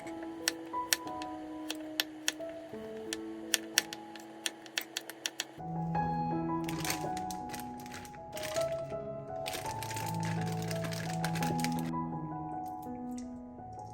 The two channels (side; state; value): both; identical; correlation 1.00